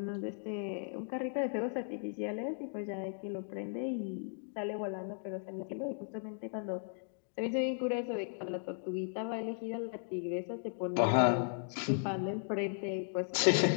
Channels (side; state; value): right; silent; digital silence